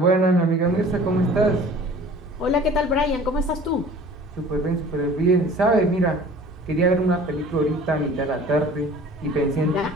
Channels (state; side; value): normal; both; correlation 0.46